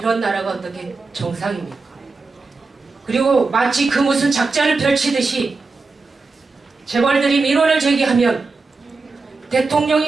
나라가 어떻게 정상입니까? 그리고 마치 그 무슨 작전을 펼치듯이 재벌들이 민원을 제기하면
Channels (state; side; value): quieter; left; 4.0 dB